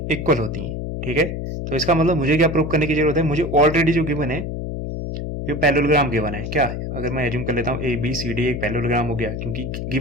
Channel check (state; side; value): noise; left; hum, 5 dB below the sound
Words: इक्वल होती हैं। ठीक है, तो इसका मतलब मुझे क्या प्रूव करने की जरूरत है, मुझे ऑलरेडी जो गिवन है ये पैरेललोग्राम गिवन है। क्या अगर मैं एज्यूम कर लेता हूँ ए बी सी डी एक पैरेललोग्राम हो गया, क्योंकि